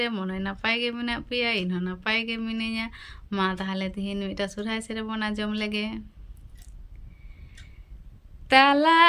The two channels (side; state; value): both; identical; correlation 1.00